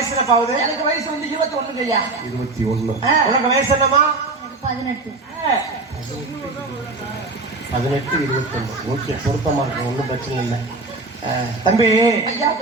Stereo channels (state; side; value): quieter; left; 3.4 dB